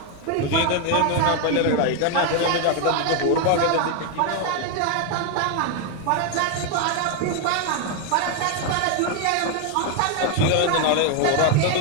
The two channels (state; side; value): different; both; correlation 0.01